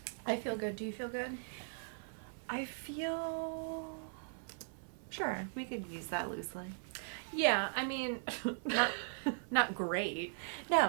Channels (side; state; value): left; silent; 52 dB below the other